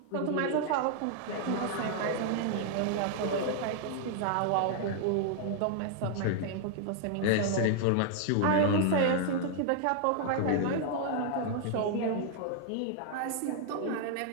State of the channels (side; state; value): both; different; correlation 0.00